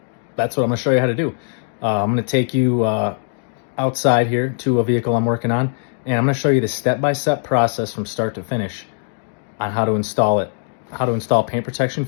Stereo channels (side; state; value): right; silent; digital silence